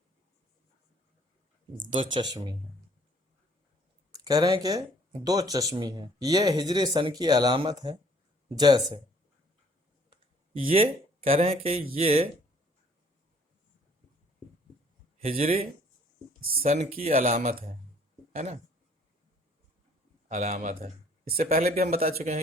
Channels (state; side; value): normal; both; correlation 0.59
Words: دو چشمی ہے، کہہ رہے ہیں کہ دو چشمی ہے، یہ ہجری سن کی علامت ہے، جیسے یہ کہہ رہے ہیں کہ یہ ہجری سن کی علامت ہے نا، علامت ہے۔ اس سے پہلے بھی ہم بتا چکے